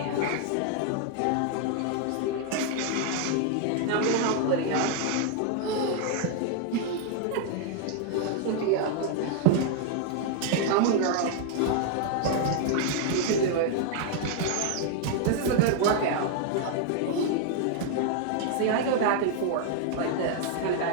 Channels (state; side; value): different; both; correlation 0.00